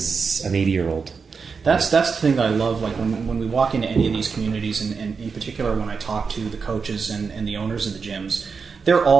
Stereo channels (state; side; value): quieter; left; 5.3 dB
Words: an 80-year-old. That's the thing that I love. Like when we walk into any of these communities, and in particular when I talk to the coaches and the owners of the gyms, they're